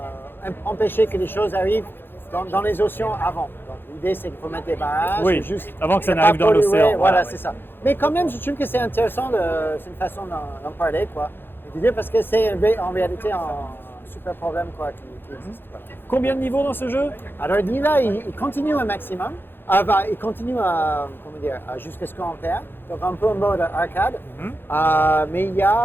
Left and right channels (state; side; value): late; right; 0.10 ms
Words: empêcher que les choses arrivent dans les océans avant. Donc l'idée, c'est qu'il faut mettre des barrages. Oui, juste avant que ça ne n'arrive pas dans polluer. l'océan. Voilà, oui. c'est ça. Mais quand même, je trouve que c'est intéressant, c'est une façon d'en parler, quoi. Et de dire parce que c'est en réalité un super problème, quoi, qui existe. Voilà. Combien de niveaux dans ce jeu? Alors là, il continue un maximum. Il continue jusqu'à ce qu'on perd. Donc un peu en mode arcade. Mais il y